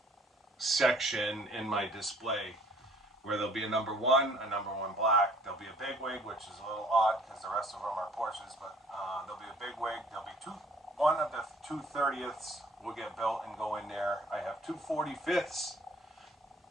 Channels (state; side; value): normal; both; correlation 0.56